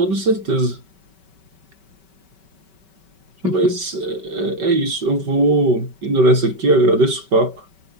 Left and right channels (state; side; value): late; left; 5.2 ms